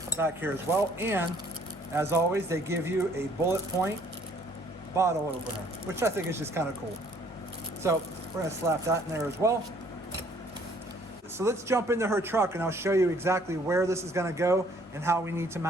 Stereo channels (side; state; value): both; normal; correlation 0.60